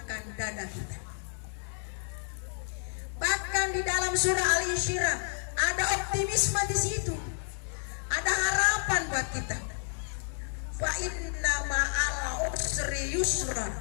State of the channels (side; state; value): right; silent; 57 dB below the other